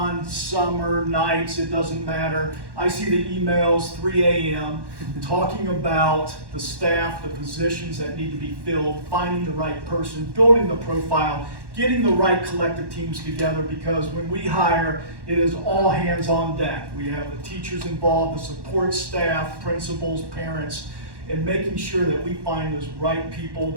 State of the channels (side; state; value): left; late; 1.1 ms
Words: summer, nights, it doesn't matter. I see the emails 3 a.m. talking about the staff, the positions that need to be filled, finding the right person, building the profile, getting the right collective teams together, because when we hire, it is all hands on deck. We have the teachers involved, the support staff, principals, parents, and making sure that we find those right people.